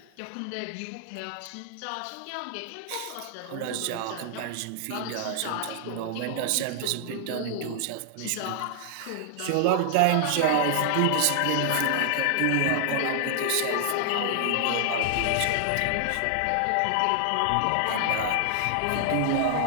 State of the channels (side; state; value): both; different; correlation 0.00